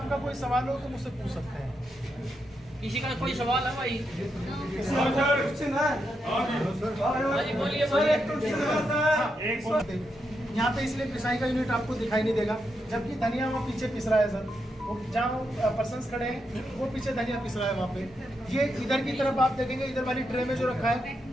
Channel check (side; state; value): both; normal; correlation 0.83